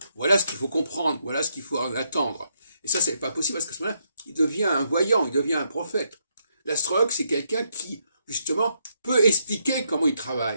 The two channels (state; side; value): inverted; both; correlation -0.77